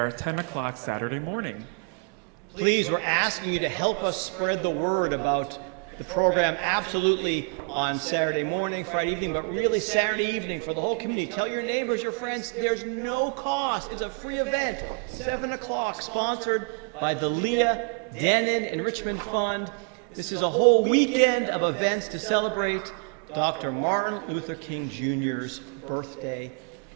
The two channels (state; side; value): quieter; left; 38.9 dB